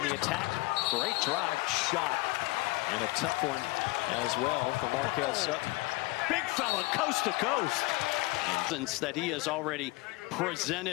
the attack. Great drive, shot, and a tough one as well for Markel Sutton. Big fella, coast to coast. Since that he has already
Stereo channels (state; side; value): quieter; right; 22.6 dB